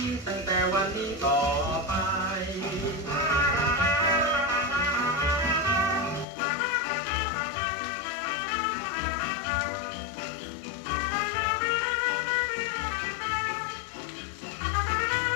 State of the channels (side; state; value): right; drops out; at 6.2 s